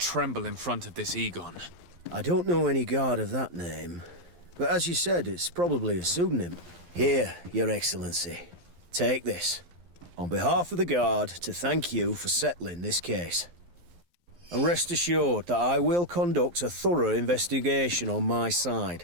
in front of this Egon. I don't know any guard of that name. But as you said, it's probably a pseudonym. Here, Your Excellency. Take this. On behalf of the Guard, to thank you for settling this case. And rest assured that I will conduct a thorough investigation on my side.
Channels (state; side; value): late; left; 11 ms